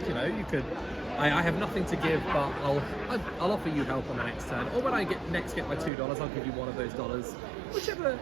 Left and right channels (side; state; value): left; drops out; at 5.9 s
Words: could. I have nothing to give, but I'll offer you help on the next turn. Or when I get my $2, I'll give you one of those dollars. Whichever,